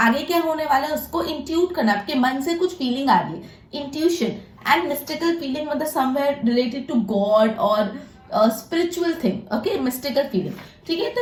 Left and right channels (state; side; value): identical; both; correlation 1.00